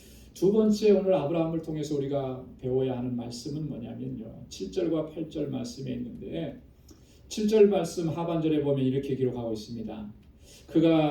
두 번째 오늘 아브라함을 통해서 우리가 배워야 하는 말씀은 뭐냐면요. 7절과 8절 말씀에 있는데 7절 말씀 하반절에 보면 이렇게 기록하고 있습니다.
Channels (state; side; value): identical; both; correlation 1.00